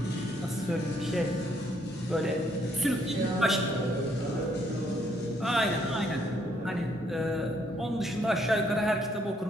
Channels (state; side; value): normal; both; correlation 0.69